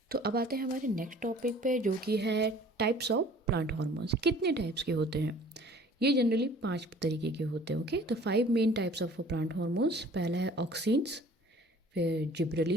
तो अब आते हैं हमारे नेक्स्ट टॉपिक पे जो कि है टाइप्स ऑफ प्लांट हार्मोन्स। कितने टाइप्स के होते हैं? ये जनरली 5 तरीके के होते हैं। ओके, तो 5 main types of plant hormones. पहला है ऑक्सिन्स, फिर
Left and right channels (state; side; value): normal; both; correlation 0.50